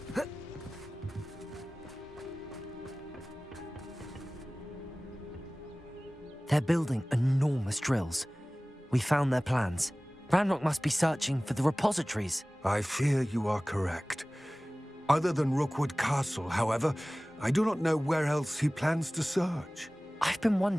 They're building enormous drills. We found their plans. Ranrock must be searching for the repositories. I fear you are correct. Other than Rookwood Castle, however, I do not know where else he plans to search. I've been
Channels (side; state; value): both; normal; correlation 0.98